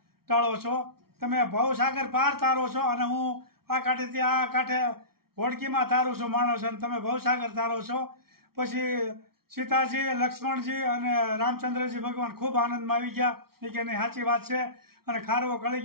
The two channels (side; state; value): left; late; 0.94 ms